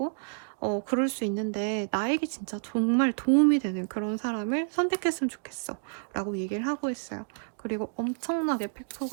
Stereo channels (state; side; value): silent; left; digital silence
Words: 그럴 수 있는데 나에게 진짜 정말 도움이 되는 그런 사람을 선택했으면 좋겠어 라고 얘기를 하고 있어요. 그리고 엄청나게